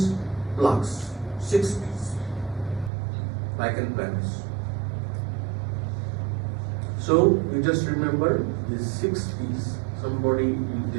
plaques. 6 P's, lichen planus. So you just remember these 6 P's. Somebody,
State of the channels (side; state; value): left; drops out; at 2.9 s